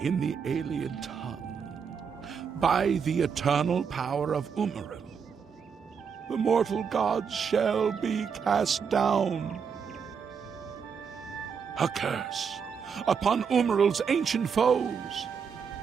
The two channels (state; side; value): quieter; left; 6.5 dB